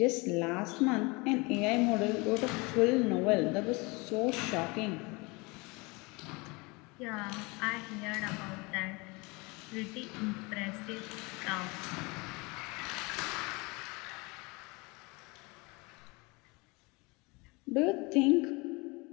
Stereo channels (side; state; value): right; quieter; 26.6 dB